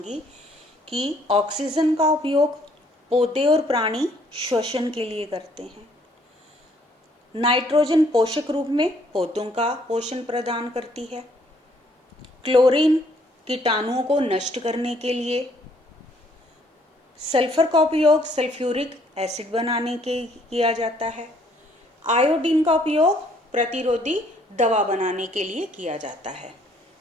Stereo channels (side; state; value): both; normal; correlation 0.65